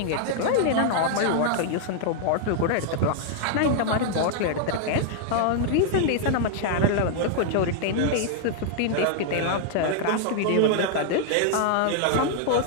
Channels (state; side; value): different; both; correlation -0.01